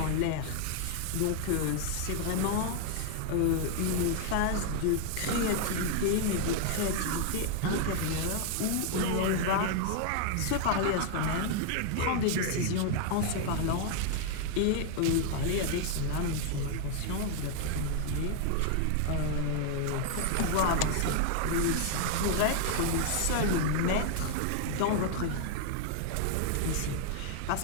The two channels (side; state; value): both; different; correlation 0.00